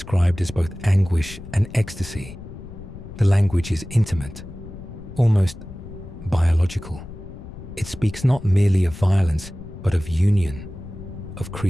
as both anguish and ecstasy. The language is intimate, almost biological. It speaks not merely of violence, but of union, of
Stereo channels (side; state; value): left; noise; rumble, 13 dB below the sound